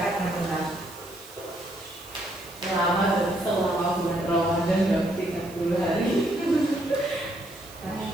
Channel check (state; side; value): noise; right; hiss, 20 dB below the sound